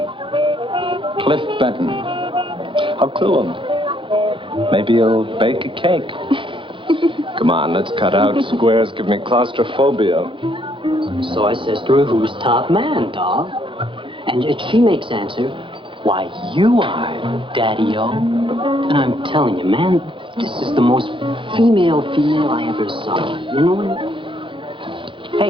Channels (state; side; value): late; left; 0.25 ms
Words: Cliff Benton. I'll clue him. Maybe he'll bake a cake. Come on, let's cut out. Squares give me claustrophobia. So I says to her, who's top man, dog? And she makes answer, why, you are, Daddy-O. And I'm telling you, man, this is the most female I ever saw. You know what?